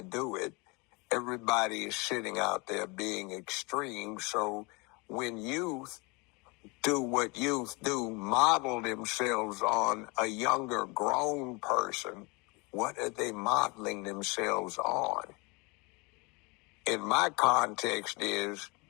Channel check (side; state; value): right; quieter; 28.1 dB